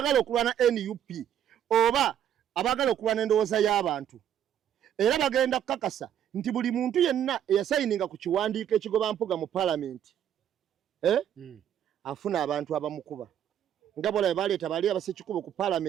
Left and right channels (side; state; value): left; quieter; 10.0 dB